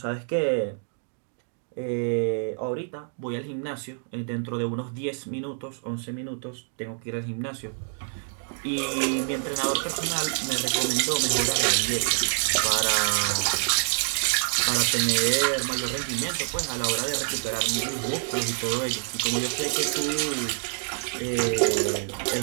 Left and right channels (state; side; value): silent; left; 59 dB below the other